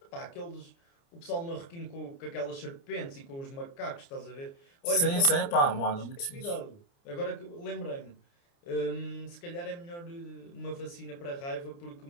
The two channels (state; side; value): late; right; 29 ms